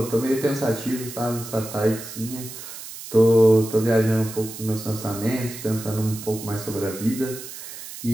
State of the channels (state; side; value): noise; right; hiss, 12 dB below the sound